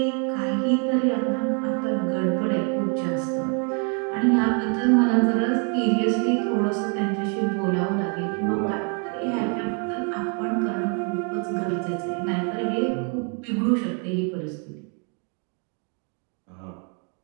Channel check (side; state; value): left; quieter; 38.6 dB